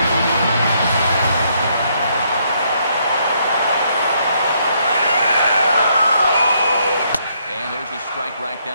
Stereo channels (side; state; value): both; inverted; correlation -0.72